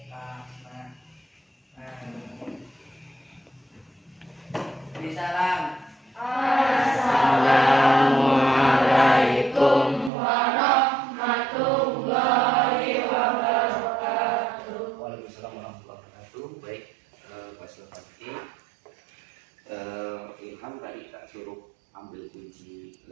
fahma. Amin. Salam. Assalamualaikum warahmatullahi wabarakatuh. Waalaikumsalam warahmatullahi wabarakatuh. Baik, Pak Silvati. Ilham tadi tak suruh ambil kunci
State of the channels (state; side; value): drops out; left; at 10.1 s